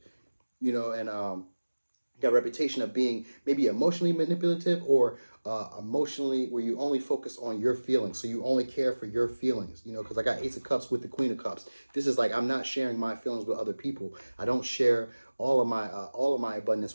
you know, and got a reputation of being maybe emotionally manipulative or emotionally where you only focus on your feelings. So you only care for your feelings, you know, because I got Ace of Cups with the Queen of Cups. This is like, I'm not sharing my feelings with other people. I don't share all of my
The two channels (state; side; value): inverted; both; correlation -1.00